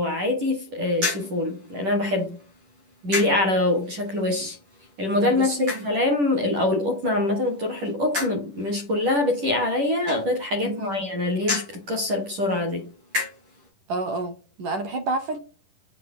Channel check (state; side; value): late; left; 10 ms